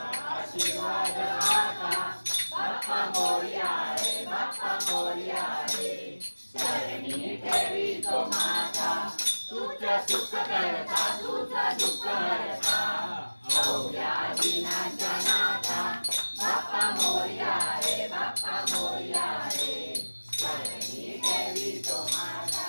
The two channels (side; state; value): both; inverted; correlation -1.00